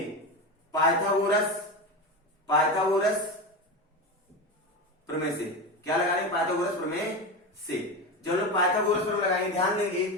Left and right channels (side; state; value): both; normal; correlation 0.21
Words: पाइथागोरस प्रमेय से क्या लगाएंगे, पाइथागोरस प्रमेय से। जब हम पाइथागोरस प्रमेय लगाएंगे, ध्यान